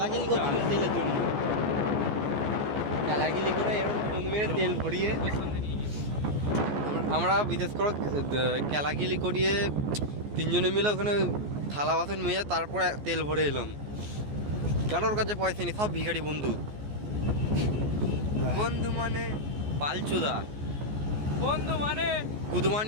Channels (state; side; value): late; left; 14 ms